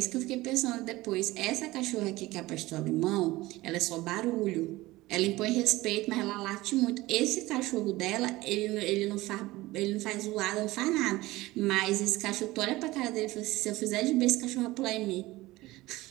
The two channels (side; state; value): left; quieter; 19.0 dB